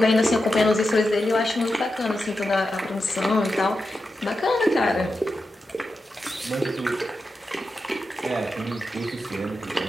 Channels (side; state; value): both; normal; correlation 0.89